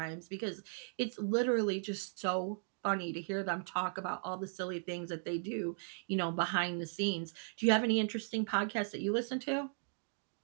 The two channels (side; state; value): left; silent; digital silence